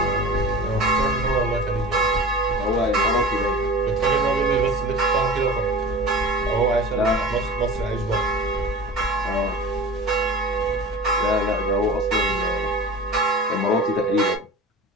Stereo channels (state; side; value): normal; both; correlation 0.36